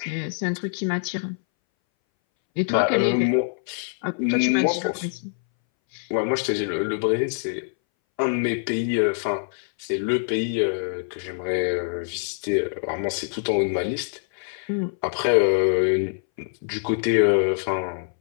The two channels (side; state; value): right; silent; 61 dB below the other